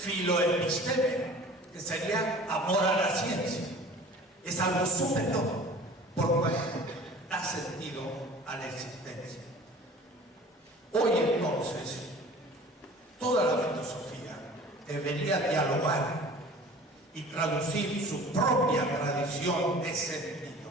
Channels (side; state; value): both; normal; correlation 0.44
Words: que sería amor a la ciencia. Es algo superior, por cual da sentido a la existencia. Hoy entonces, toda la filosofía debería dialogar y traducir su propia tradición de sentido.